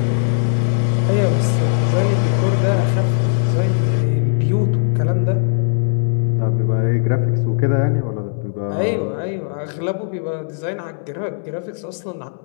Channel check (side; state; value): right; silent; digital silence